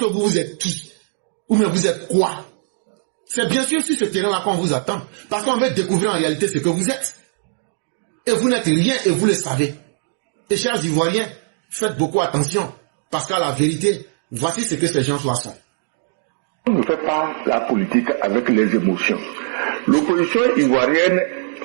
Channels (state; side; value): silent; left; digital silence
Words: vous êtes qui? Ou bien vous êtes quoi? C'est bien sûr sur ce terrain-là qu'on vous attend. Parce qu'on veut découvrir en réalité ce que vous êtes. Et vous n'êtes rien et vous le savez. Et chers Ivoiriens, faites beaucoup attention. Parce qu'à la vérité, voici ce que ces gens-là sont. On ne fait pas la politique avec les émotions. L'opposition ivoirienne